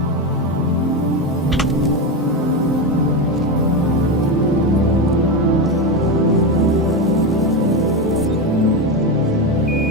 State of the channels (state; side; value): normal; both; correlation 0.14